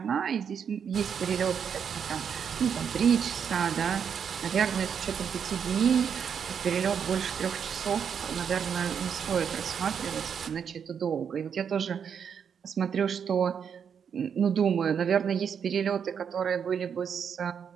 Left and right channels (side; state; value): left; quieter; 7.4 dB